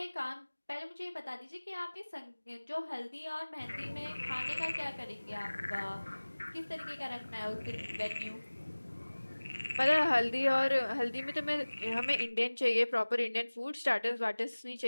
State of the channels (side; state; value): both; inverted; correlation -1.00